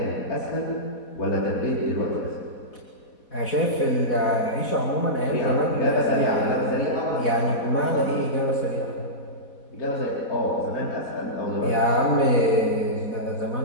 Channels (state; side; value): late; right; 4.2 ms